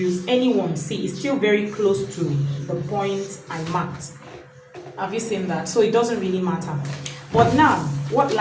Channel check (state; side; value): identical; both; correlation 1.00